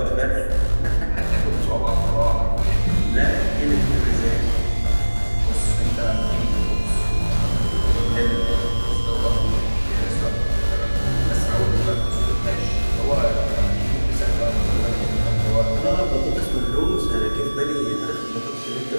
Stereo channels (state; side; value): inverted; both; correlation -1.00